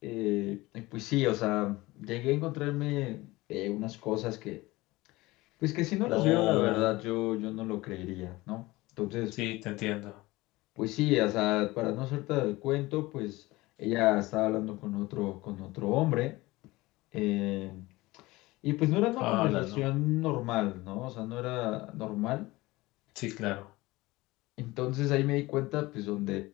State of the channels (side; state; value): right; quieter; 20.3 dB